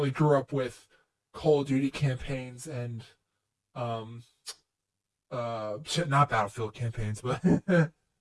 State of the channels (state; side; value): identical; both; correlation 1.00